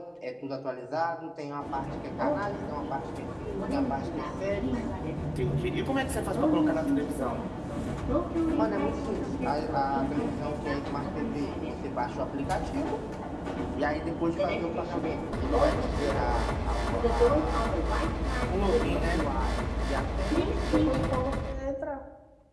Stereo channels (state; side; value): identical; both; correlation 1.00